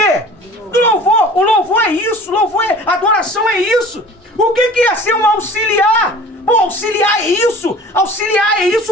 Do louvor. O louvor é isso. Louvor é adoração, é isso. O que é ser um auxiliar? Pô, auxiliar é isso. Auxiliar é isso.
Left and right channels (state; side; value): normal; both; correlation 0.44